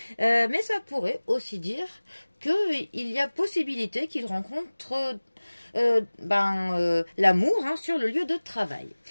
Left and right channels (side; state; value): both; inverted; correlation -1.00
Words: Mais ça pourrait aussi dire qu'il y a possibilité qu'il rencontre l'amour sur le lieu de travail.